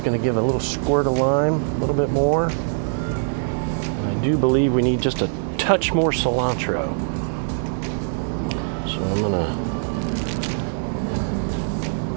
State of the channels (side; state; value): left; silent; digital silence